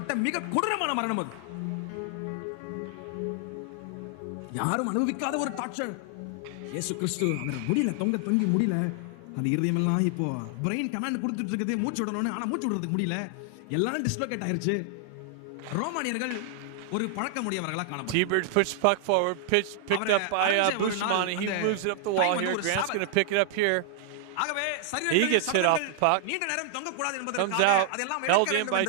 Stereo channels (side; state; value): both; different; correlation 0.00